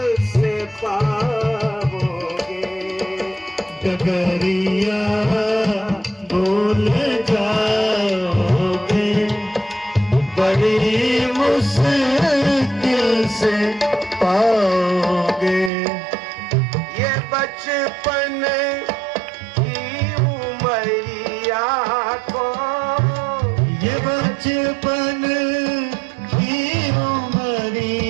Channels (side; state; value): left; drops out; at 15.7 s